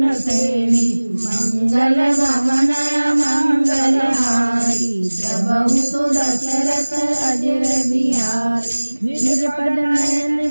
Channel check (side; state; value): both; inverted; correlation -1.00